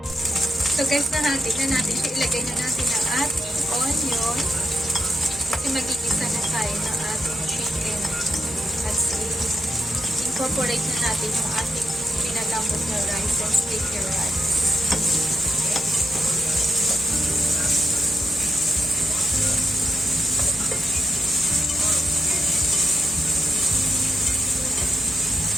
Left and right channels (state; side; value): normal; both; correlation 0.84